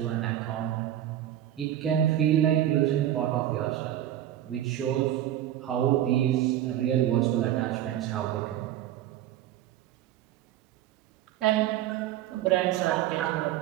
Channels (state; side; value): quieter; left; 12.1 dB